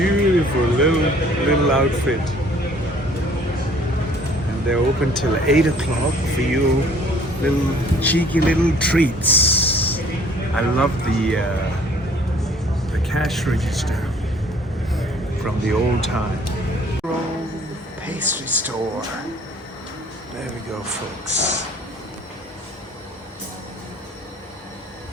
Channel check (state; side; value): normal; both; correlation 0.56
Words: little outfit. And they're open till 8 o'clock for you little cheeky little treats. I love the cash register from the old time. Pastry store. There we go, folks.